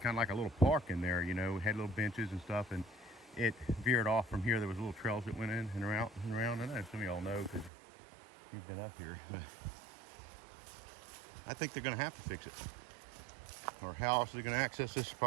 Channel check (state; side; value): drops out; left; at 7.7 s